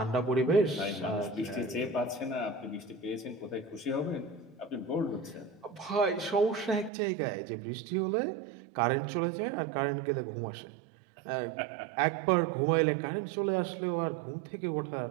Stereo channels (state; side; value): drops out; left; at 6.9 s